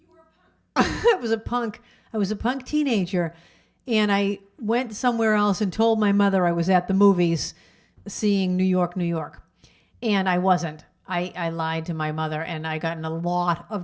I was a punk. I was a punk teenager, and I went somewhere else and told my mother I was at the movies seeing New York, New York. And I wasn't. I lied to my mother, and I got in a lot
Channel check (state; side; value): identical; both; correlation 1.00